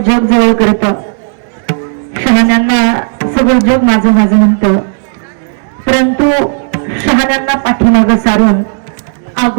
जग जवळ करतं, शहाण्यांना सगळं जग माझं माझं म्हणतं, परंतु शहाण्यांना पाठीमागं सारून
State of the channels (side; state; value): left; silent; digital silence